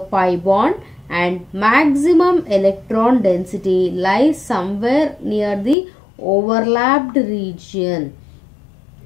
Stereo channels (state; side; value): drops out; right; at 5.8 s